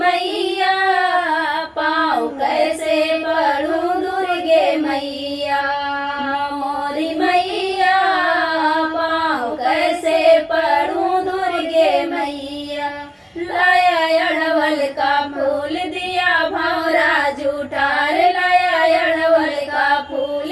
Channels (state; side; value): identical; both; correlation 1.00